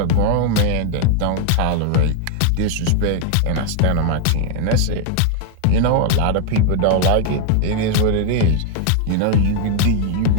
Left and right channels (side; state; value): both; different; correlation 0.00